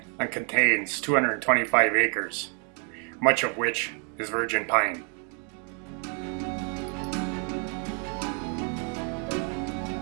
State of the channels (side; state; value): left; quieter; 39.8 dB